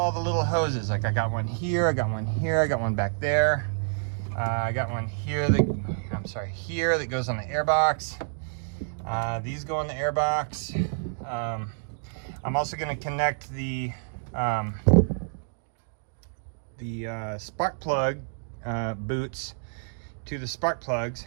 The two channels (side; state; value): left; silent; digital silence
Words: the little hoses. Like I got one here, I got one here, I got one back there. I got one here here that goes on the airbox. These go on the airbox. I'm also gonna connect the spark plug boots to the spark